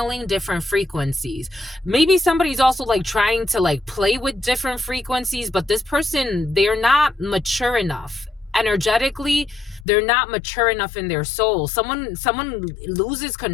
different frequencies. Maybe somebody's also like trying to like play with different frequencies, but this person, they're not mature enough. Energetically, they're not mature enough in their soul. Someone loses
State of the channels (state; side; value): drops out; right; at 9.9 s